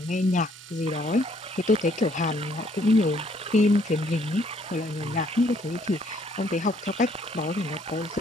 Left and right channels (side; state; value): both; normal; correlation 0.66